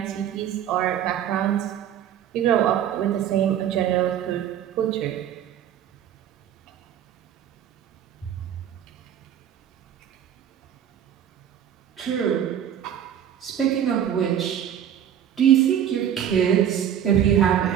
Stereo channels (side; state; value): left; quieter; 9.8 dB